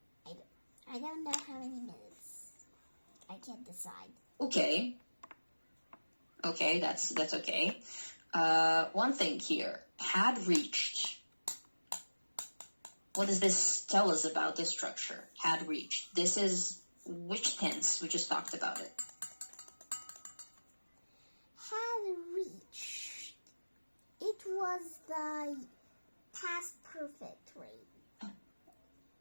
I don't know how many minutes. I can't decide. Okay, that's okay. One thing here, had reached. What does this tell us about this structure? Had reached. This is which tense? We just talked about it. Had reached. It was the past perfect, right?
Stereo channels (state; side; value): inverted; both; correlation -1.00